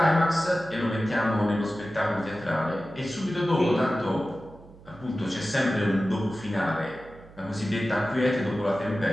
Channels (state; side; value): noise; right; hum, 21 dB below the sound